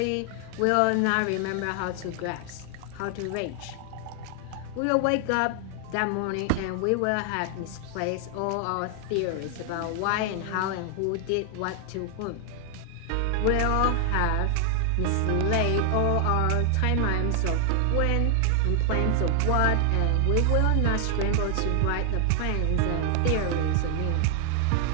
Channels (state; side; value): different; both; correlation 0.00